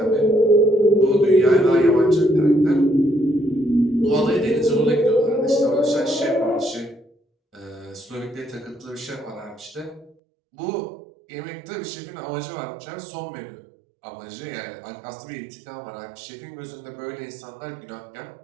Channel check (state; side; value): drops out; left; at 10.2 s